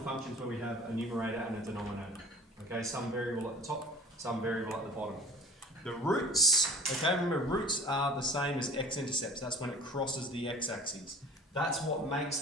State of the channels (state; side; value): normal; both; correlation 0.45